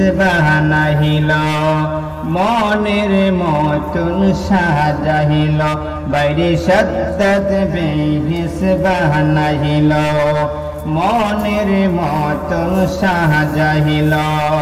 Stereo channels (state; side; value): identical; both; correlation 1.00